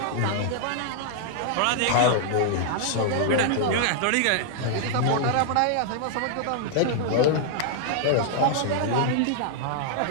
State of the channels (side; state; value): both; different; correlation -0.01